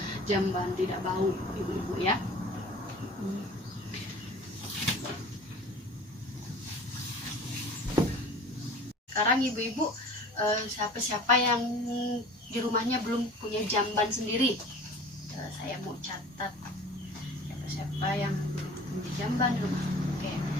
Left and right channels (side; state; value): both; normal; correlation 0.43